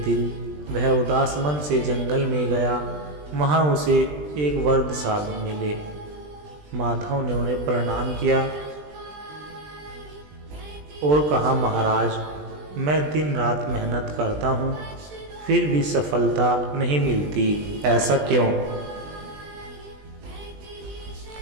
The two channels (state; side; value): late; left; 20 ms